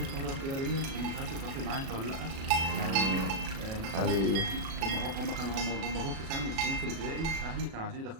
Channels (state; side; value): late; left; 37 ms